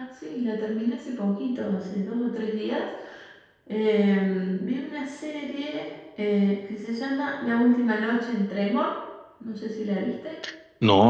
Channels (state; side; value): identical; both; correlation 1.00